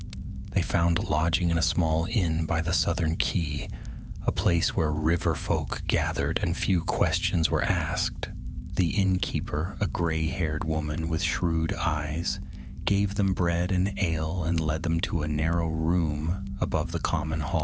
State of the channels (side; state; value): both; identical; correlation 1.00